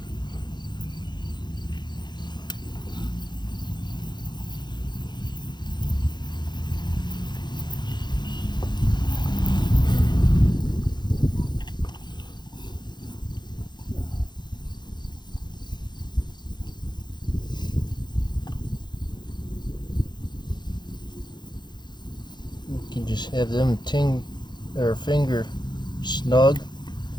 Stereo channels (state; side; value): late; right; 0.21 ms